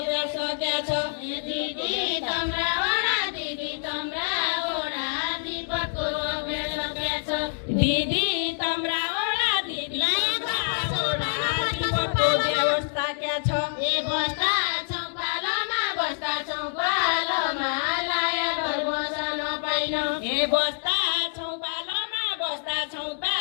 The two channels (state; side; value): silent; right; 61 dB below the other